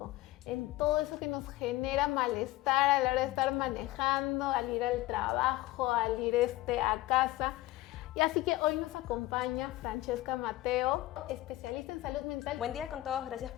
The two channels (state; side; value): quieter; right; 17.5 dB